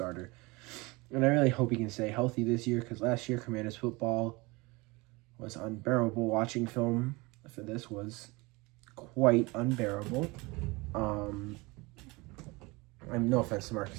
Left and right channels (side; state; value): left; quieter; 24.5 dB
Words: And I really hope he can stay healthy this year, because last year Commanders football was unbearable. Watching film for this was quite unbearable. I'm no offense to